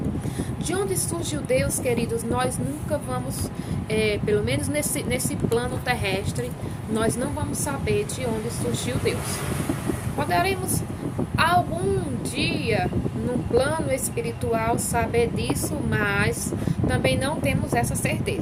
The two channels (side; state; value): both; identical; correlation 1.00